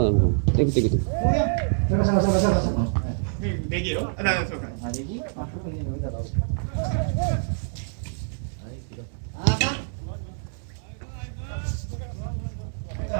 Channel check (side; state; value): left; silent; digital silence